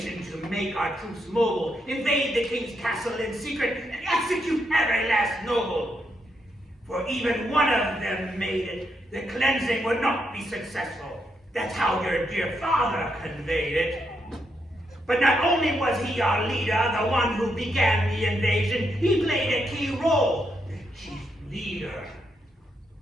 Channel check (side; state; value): both; normal; correlation 0.80